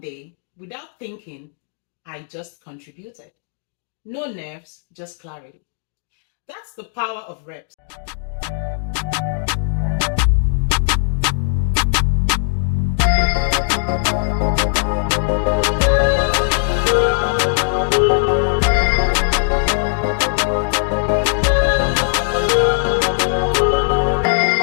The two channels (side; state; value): right; silent; digital silence